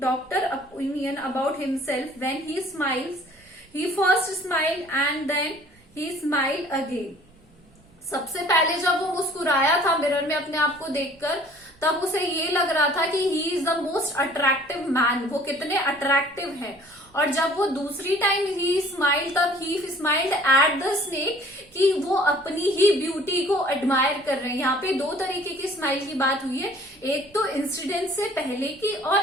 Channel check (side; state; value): right; noise; rumble, 30 dB below the sound